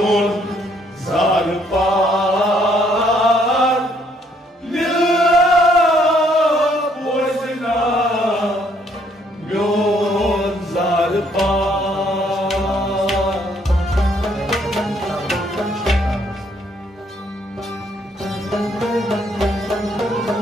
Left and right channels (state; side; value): normal; both; correlation 0.67